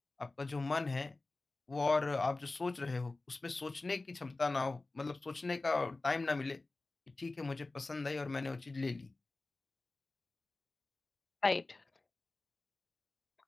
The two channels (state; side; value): quieter; right; 3.2 dB